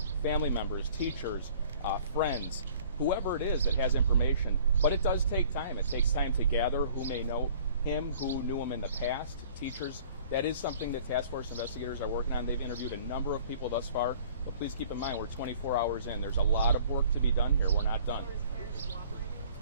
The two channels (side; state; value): both; inverted; correlation -0.53